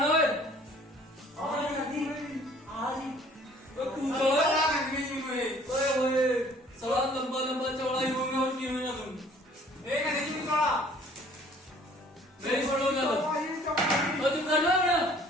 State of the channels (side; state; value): both; normal; correlation 0.55